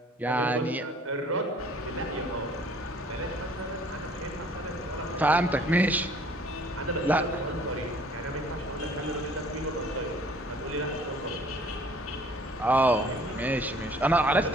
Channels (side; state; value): both; normal; correlation 0.55